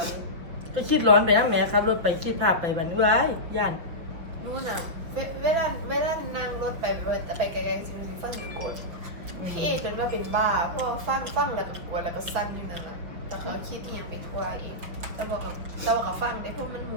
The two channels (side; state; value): left; late; 5.7 ms